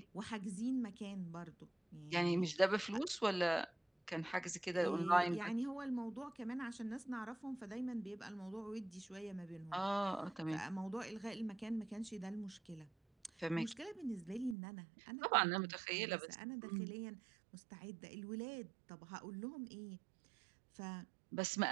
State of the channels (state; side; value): drops out; left; at 14.6 s